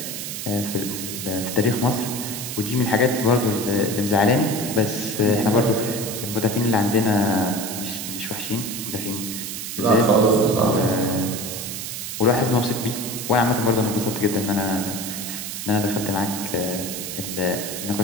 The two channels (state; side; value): noise; right; hiss, 6 dB below the sound